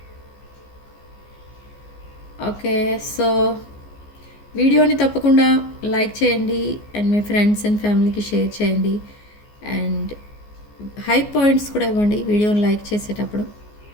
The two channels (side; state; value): right; late; 14 ms